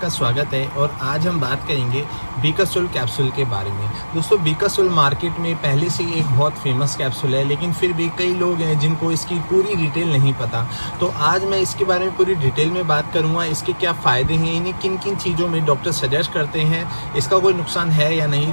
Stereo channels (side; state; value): both; inverted; correlation -1.00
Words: स्वागत है। और आज हम बात करेंगे बीकासोल कैप्सूल के बारे में। दोस्तों, बीकासोल मार्केट में पहले से एक बहुत फेमस कैप्सूल है, लेकिन फिर भी कई लोग हैं जिनको इसकी पूरी डिटेल नहीं पता। तो आज मैं इसके बारे में पूरी डिटेल में बात करूंगा। इसके क्या फ़ायदे हैं, इन्हें किन किन चीज़ों में डॉक्टर सजेस्ट करते हैं, इसका कोई नुकसान है या नहीं।